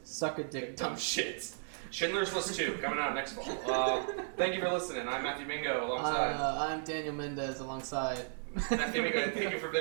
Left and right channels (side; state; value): left; silent; digital silence